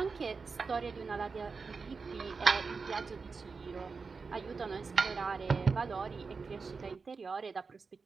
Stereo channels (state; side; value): quieter; left; 4.7 dB